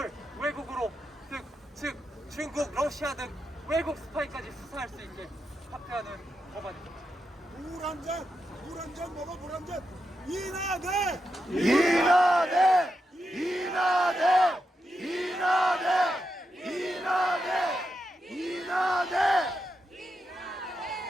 외국으로 즉 중국, 러시아 등 외국 스파이까지 수사할 수 있게 확대하는 법안입니다. 물 한 잔 먹어, 물 한 잔. 이나대! 이나대! 이나대! 이나대! 이나대! 이나대!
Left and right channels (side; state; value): both; normal; correlation 0.86